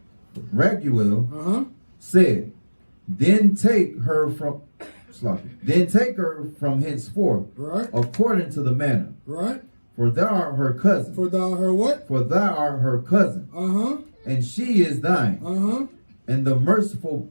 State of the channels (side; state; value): both; inverted; correlation -1.00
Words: Raguel said, Then take her from henceforth, right, according to the manner. Right. For thou art her cousin. For thou her what? For thou art her cousin. And she is thine. And the merciful